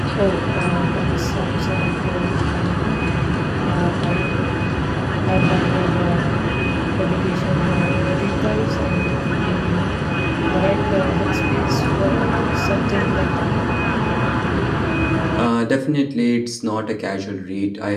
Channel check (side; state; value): both; identical; correlation 1.00